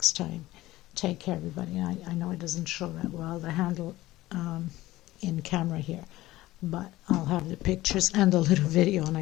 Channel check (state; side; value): quieter; right; 17.0 dB